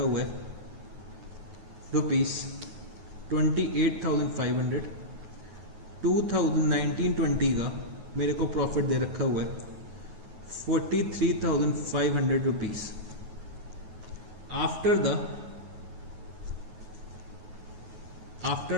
हुआ है ₹28,500। 2019-20 का मेरे को profit दे रखा हुआ है ₹43,500।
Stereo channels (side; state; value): left; late; 9.4 ms